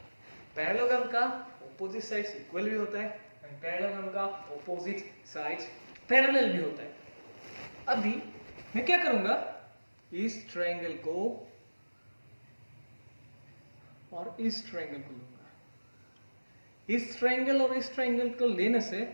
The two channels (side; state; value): both; inverted; correlation -1.00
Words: Parallelogram का opposite sides equal भी होता है और पैरेललोग्राम का opposite sides parallel भी होता है। अभी मैं क्या करूंगा, इस ट्रायंगल को और इस ट्रायंगल को लूंगा। इस ट्रायंगल और इस ट्रायंगल को लेने से